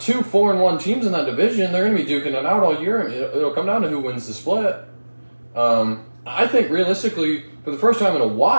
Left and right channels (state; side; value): inverted; both; correlation -1.00